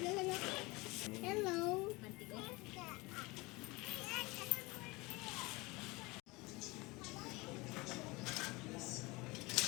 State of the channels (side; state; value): right; quieter; 23.7 dB